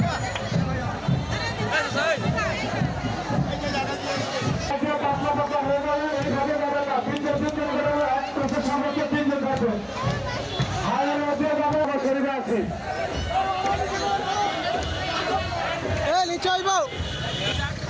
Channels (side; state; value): both; identical; correlation 1.00